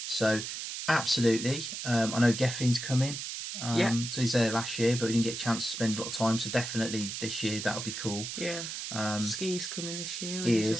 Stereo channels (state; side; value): noise; right; hiss, 6 dB below the sound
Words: So absolutely, I know Geffin's coming. So he's there last year, but we didn't get a chance to spend a lot of time. So definitely this year that'll be cool. yeah. Ski's coming this year. He